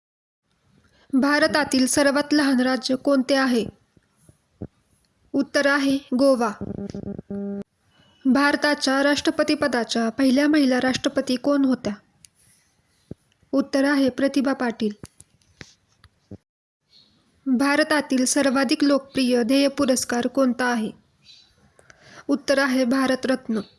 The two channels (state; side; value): identical; both; correlation 1.00